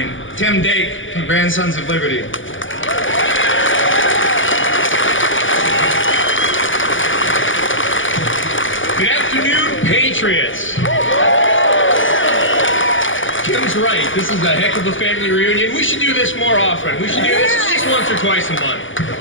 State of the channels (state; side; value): late; right; 0.57 ms